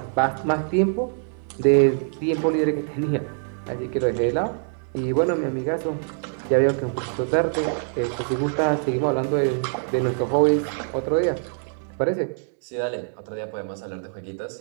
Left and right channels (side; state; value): left; silent; digital silence